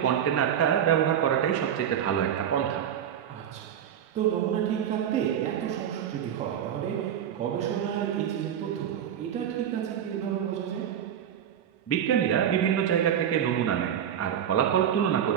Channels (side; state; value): left; quieter; 9.5 dB